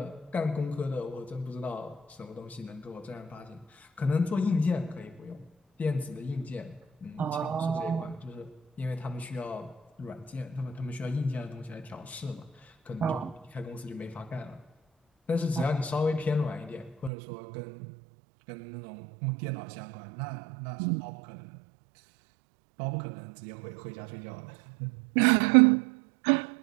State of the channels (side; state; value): left; drops out; at 17.1 s